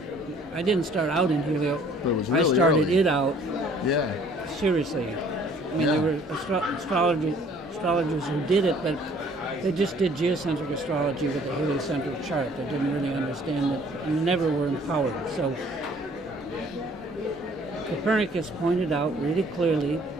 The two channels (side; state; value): both; normal; correlation 0.57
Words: I didn't start out in helio. But it was really I started early. it out. Yeah. Seriously. I mean, there were astrologers who did it, but they just did geocentric astrology with a heliocentric chart. They didn't really understand it and never were empowered. So Copernicus pointed out really clearly